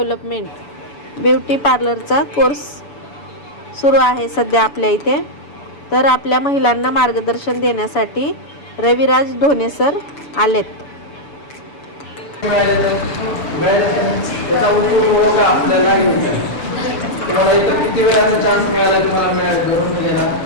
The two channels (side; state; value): right; late; 7.0 ms